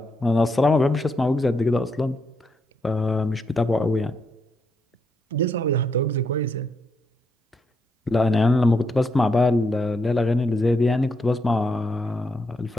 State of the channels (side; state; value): both; normal; correlation 0.79